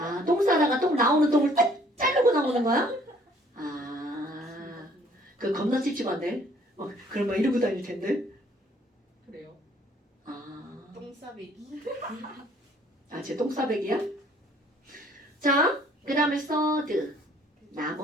똥 싸다가 똥 나오는 똥을 딱 자르고 나오는 거야? 아, 그 겁나 찝찝한데? 그럼 막 이러고 다닐 텐데? 그래요? 아, 똥싸배기. 쟤 똥싸배기야? 자, 그 다음에 서드.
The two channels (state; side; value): normal; both; correlation 0.60